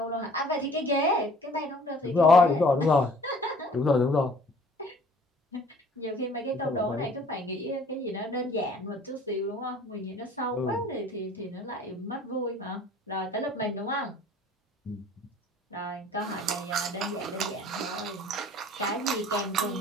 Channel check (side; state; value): both; normal; correlation 0.52